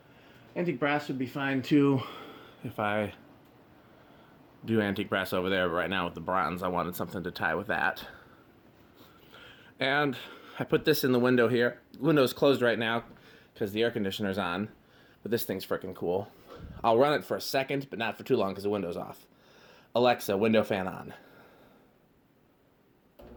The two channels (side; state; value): both; identical; correlation 1.00